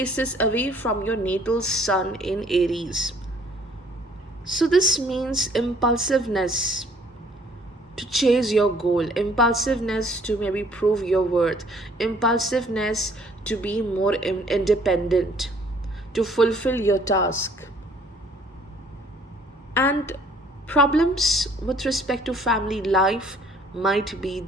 away from your natal sun in Aries. So this means impulsiveness to chase your goal, impulsiveness to maybe prove your worth, impulsiveness to be more independent, to fulfill your task. And problems with respect to family life might be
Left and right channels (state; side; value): normal; both; correlation 0.59